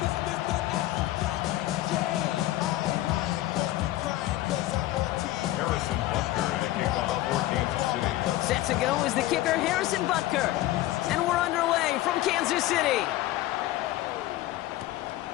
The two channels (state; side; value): quieter; right; 15.8 dB